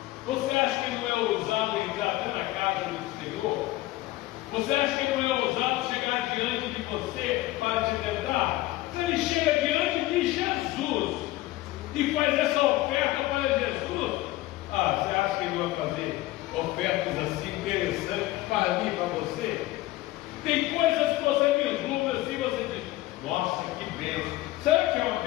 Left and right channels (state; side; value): quieter; right; 17.5 dB